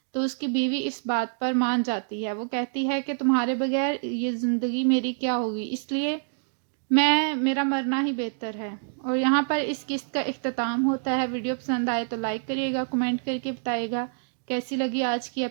تو اس کی بیوی اس بات پر مان جاتی ہے۔ وہ کہتی ہے کہ تمہارے بغیر یہ زندگی میری کیا ہوگی، اس لیے میرا مرنا ہی بہتر ہے۔ اور یہاں پر اس قسط کا اختتام ہوتا ہے۔ ویڈیو پسند آئے تو لائک کریے گا، کمنٹ کر کے بتائیے گا کیسی لگی آج کی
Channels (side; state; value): left; silent; digital silence